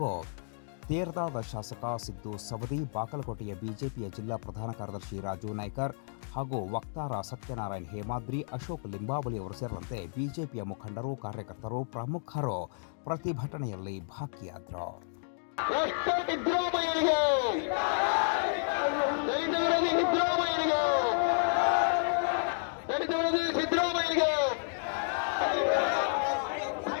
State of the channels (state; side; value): silent; right; digital silence